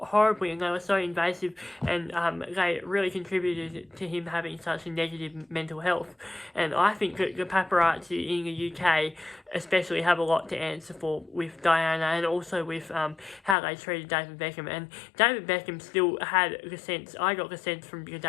and they were so invasive, and they really contributed to him having such a negative mental health. And I think that the paparazzi in the UK especially have a lot to answer for with Diana, and also with how they treated David Beckham. And David Beckham still had the sense, I got the sense from the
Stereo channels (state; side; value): drops out; right; at 13.6 s